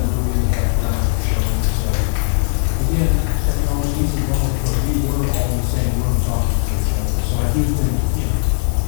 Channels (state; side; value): silent; right; digital silence